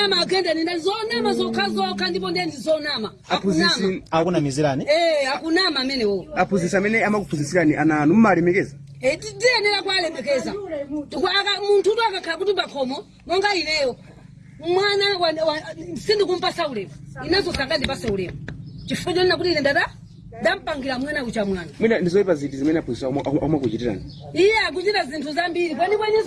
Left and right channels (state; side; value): identical; both; correlation 1.00